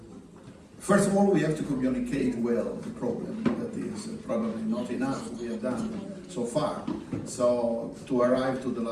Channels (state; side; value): identical; both; correlation 1.00